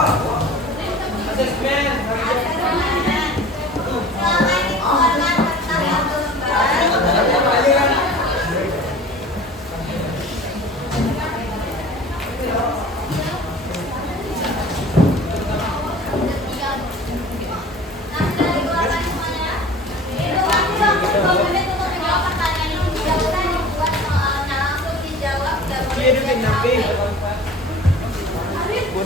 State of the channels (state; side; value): normal; both; correlation 0.42